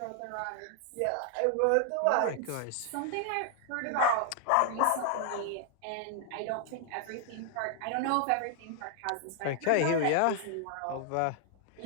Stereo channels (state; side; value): different; both; correlation 0.00